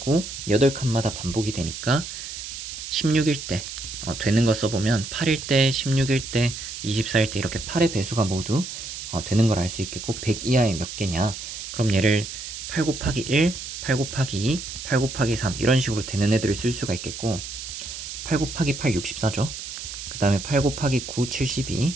8칸마다 반복이 되니까 16일 때 되는 거 써보면 8일 때, 16일 때, 24일 때 이렇게 8의 배수가 모두 되는 걸 알 수 있겠고 100 이하에 몇 개냐? 그럼 얘를 8 곱하기 1, 8 곱하기 2, 8 곱하기 3 이런 식으로 되는 애들을 쓸 수가 있겠고 8 곱하기 8 64죠. 그 다음에 8 곱하기 9 72,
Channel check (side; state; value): right; noise; hiss, 9 dB below the sound